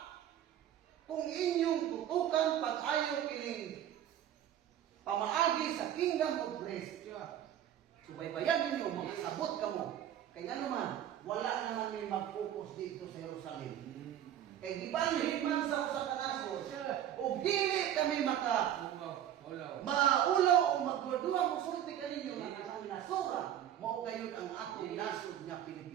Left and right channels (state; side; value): quieter; left; 10.9 dB